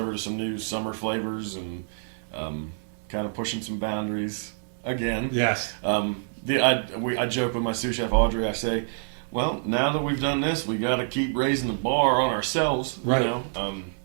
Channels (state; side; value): silent; left; digital silence